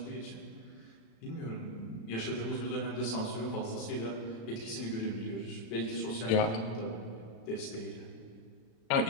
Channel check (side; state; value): right; late; 35 ms